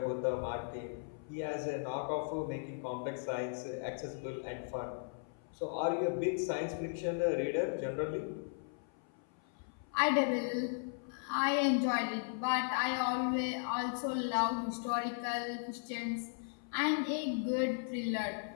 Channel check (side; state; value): right; silent; 53 dB below the other